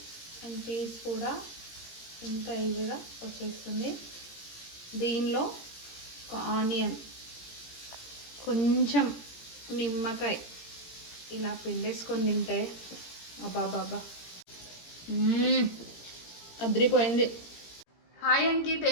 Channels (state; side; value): late; right; 17 ms